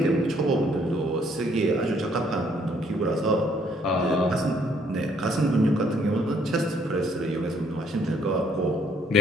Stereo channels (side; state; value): both; normal; correlation 0.66